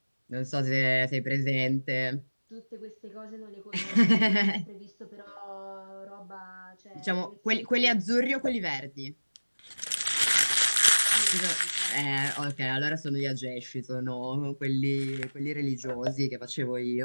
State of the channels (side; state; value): both; inverted; correlation -1.00